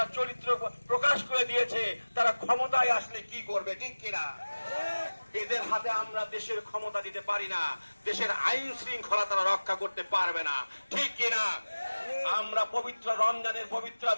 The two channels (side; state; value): both; inverted; correlation -1.00